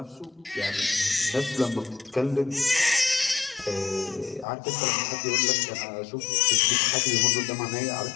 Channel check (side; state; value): right; drops out; at 4.5 s